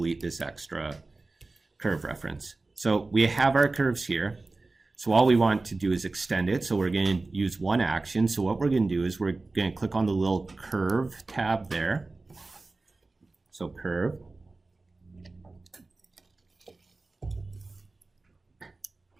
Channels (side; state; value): left; quieter; 3.4 dB